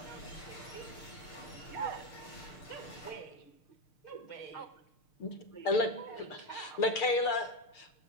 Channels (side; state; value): right; late; 6.7 ms